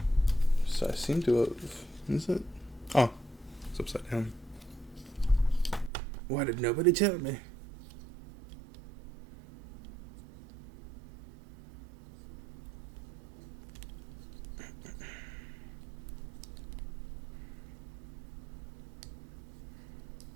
So I seem to have... Is it? Oh, it's upside down. Why did nobody tell me?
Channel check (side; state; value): left; drops out; at 5.9 s